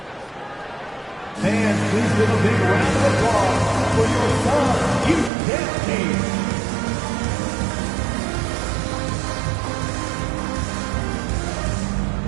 And please give a big round of applause for your Suns youth team.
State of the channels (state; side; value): drops out; left; at 5.3 s